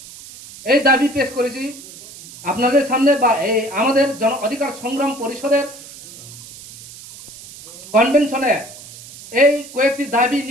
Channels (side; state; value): right; noise; hiss, 17 dB below the sound